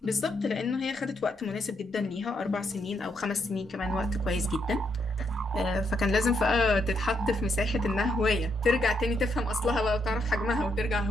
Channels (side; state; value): both; normal; correlation 0.77